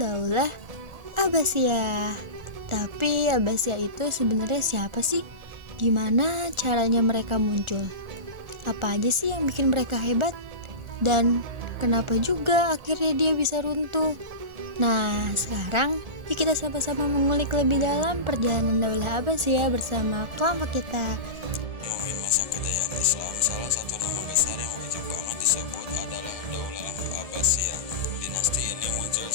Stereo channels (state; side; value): late; left; 1.4 ms